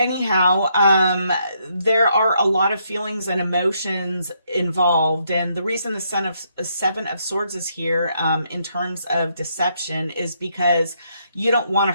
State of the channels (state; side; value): inverted; both; correlation -0.74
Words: there are a lot of feelings and emotions involved. And the reason the Seven of Swords is here, in terms of deception, is because you don't want